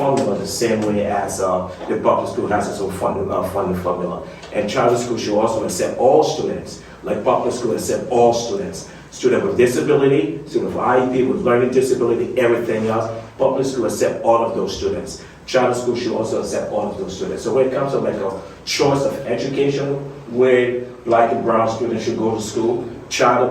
the same way as the public school has its own funding formula. And charter school should also accept all students, like public school accept all students. Student with disability, student with IEP, with learning disability, everything else. Public school accept all of those students. Charter school should also accept all of those students. So when it comes to like a choice of education, where Black and brown students should go to school, charter,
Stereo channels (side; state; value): both; identical; correlation 1.00